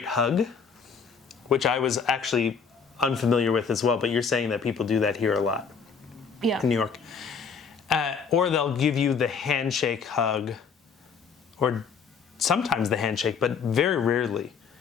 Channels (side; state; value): right; quieter; 6.0 dB